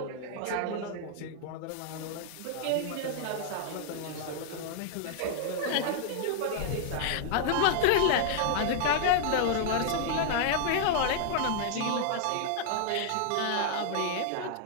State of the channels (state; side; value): different; both; correlation -0.01